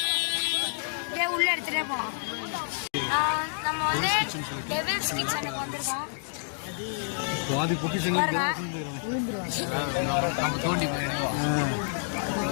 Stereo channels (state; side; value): silent; right; digital silence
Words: இதே உள்ள எடுத்துகிட்டே போகலாம். நம்ம வந்து டெவில்ஸ் கிச்சனுக்கு வந்திருக்கோம்.